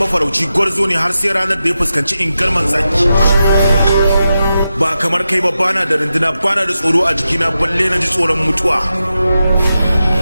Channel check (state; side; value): inverted; both; correlation -0.90